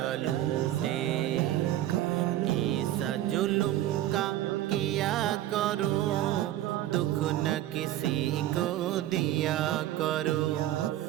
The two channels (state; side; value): quieter; left; 13.6 dB